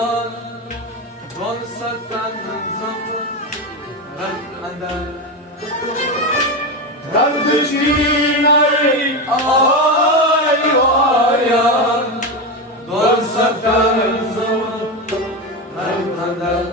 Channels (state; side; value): normal; both; correlation 0.16